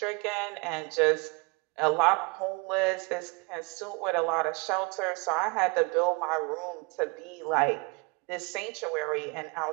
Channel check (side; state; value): left; quieter; 29.3 dB